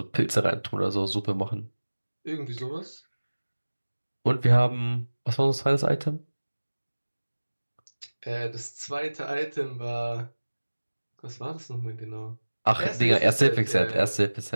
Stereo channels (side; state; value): both; inverted; correlation -1.00